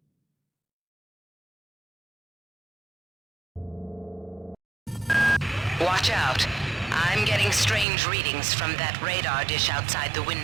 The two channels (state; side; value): drops out; left; at 7.9 s